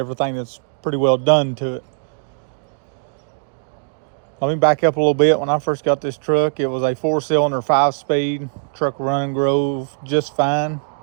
that's pretty well done to it. Let me back up a little bit. When I first got this truck, it was a 4-cylinder, 5-speed truck, running grove just fine.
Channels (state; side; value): silent; left; digital silence